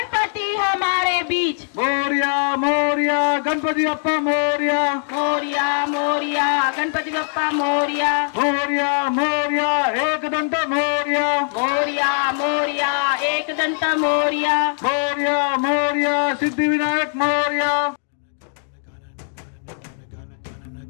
हमारे बीच मोरिया मोरिया गणपति बाप्पा मोरिया मोरिया मोरिया गणपति बप्पा मोरिया मोरिया मोरिया एक दंत मोरिया मोरिया मोरिया एक दंत Moriya Moriya Moriya Siddhi Vinayak Moriya.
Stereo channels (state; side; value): silent; right; digital silence